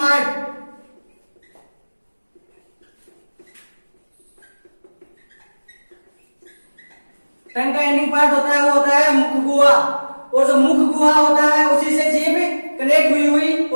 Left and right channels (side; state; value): both; inverted; correlation -1.00